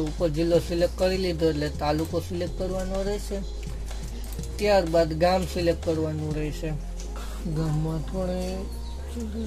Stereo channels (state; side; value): identical; both; correlation 1.00